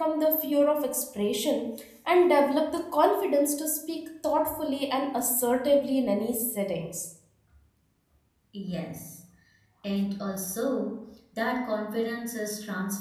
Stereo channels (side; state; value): both; identical; correlation 1.00